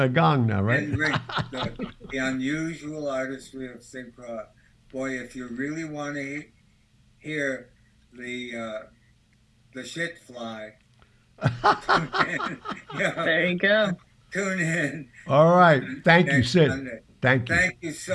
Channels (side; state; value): both; identical; correlation 1.00